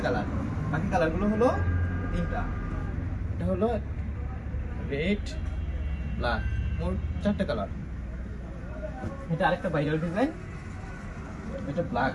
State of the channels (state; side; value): identical; both; correlation 1.00